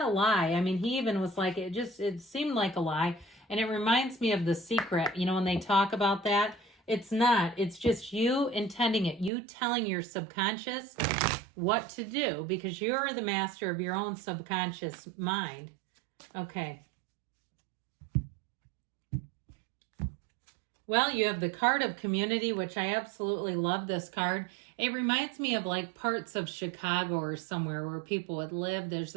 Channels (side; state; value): left; drops out; at 9.3 s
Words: a lie. I mean, he even was like, it seemed like a lie. And it reminds me of The Secret, when they talk about that. It's not. It's just you intending it. You telling your subconscious what to do, because you're the master of your own subconscious mind. Okay. Well, you have the card of community, which I absolutely love this card. It reminds me of like parts of Chicago or somewhere where people would live. There's